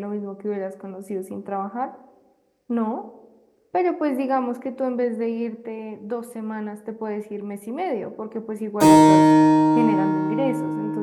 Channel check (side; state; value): both; identical; correlation 1.00